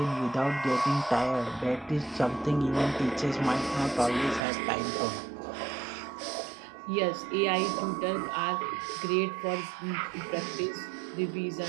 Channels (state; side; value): drops out; left; at 4.4 s